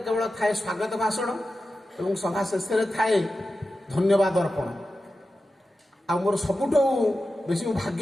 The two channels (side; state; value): both; normal; correlation 0.92